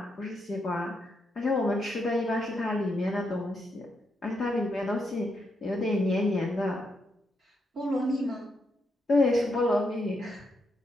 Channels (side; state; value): both; normal; correlation 0.80